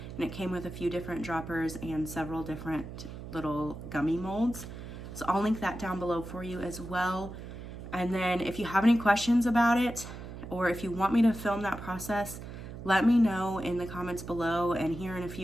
and it came with a few different droppers and several different little gummy molds. So I'll link that down below for you as well. And then if you have any questions about it, or if you want me to film that process, let me know in the comments below. And here in a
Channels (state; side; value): noise; right; hum, 11 dB below the sound